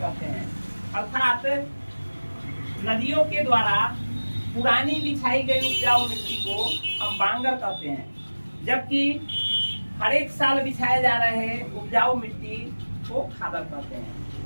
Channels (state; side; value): inverted; both; correlation -1.00